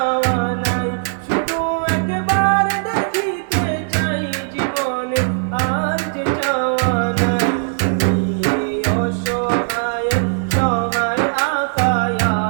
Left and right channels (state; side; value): silent; left; digital silence